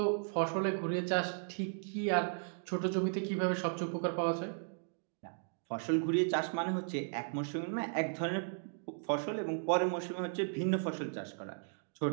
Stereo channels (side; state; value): left; silent; digital silence